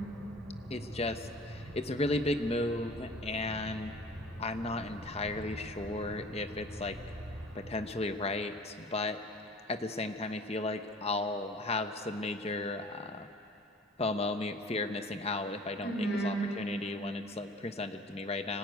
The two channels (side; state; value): both; normal; correlation 0.46